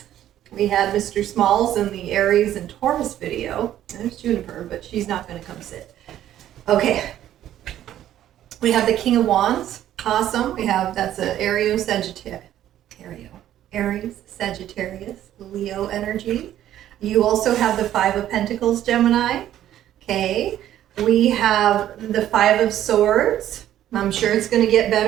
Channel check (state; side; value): quieter; left; 12.0 dB